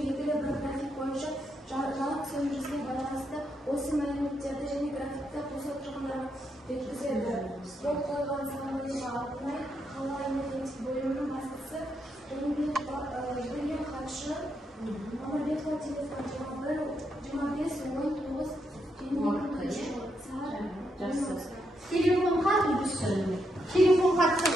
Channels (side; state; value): both; normal; correlation 0.80